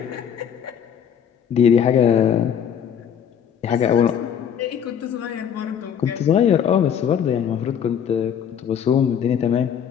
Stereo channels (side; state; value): right; quieter; 8.3 dB